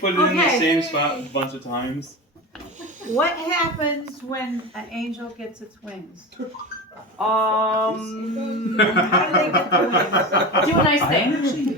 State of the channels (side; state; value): both; normal; correlation 0.26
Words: it in the Okay. same spot a bunch of times. What happens when an angel gets its wings? How How do they get the wings? do a nice thing.